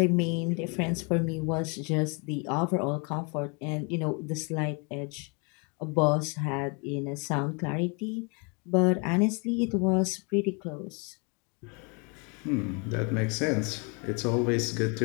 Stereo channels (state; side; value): quieter; right; 33.5 dB